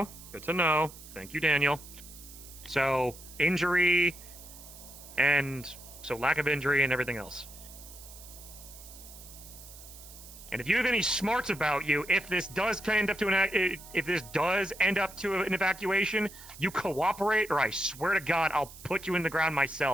Good to know. Thank you, Daniel. So, injury, and so lack of injury and everything else. And if you have any smarts about you, if this does end up to an evacuation, you cooperate, or I swear to God, I'll put you in the ground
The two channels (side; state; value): right; noise; hiss, 17 dB below the sound